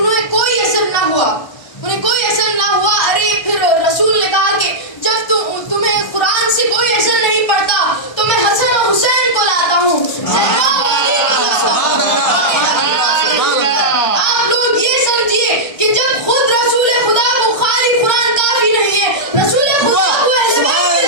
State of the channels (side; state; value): right; late; 1.3 ms